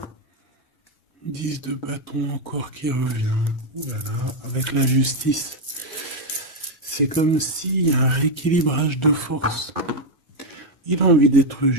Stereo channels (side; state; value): both; normal; correlation 0.03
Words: Dix de bâton encore qui revient. Voilà, avec la justice. C'est comme s'il y a un rééquilibrage de force. Il a envie d'être